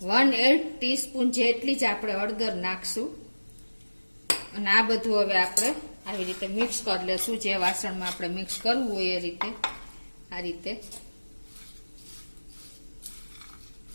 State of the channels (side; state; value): both; inverted; correlation -1.00